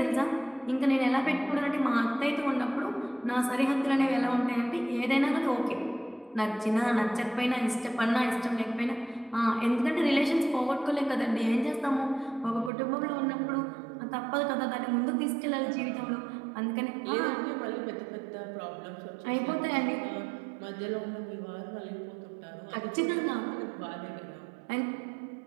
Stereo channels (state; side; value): drops out; left; at 12.7 s